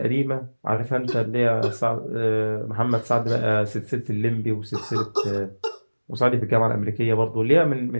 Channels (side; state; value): both; inverted; correlation -1.00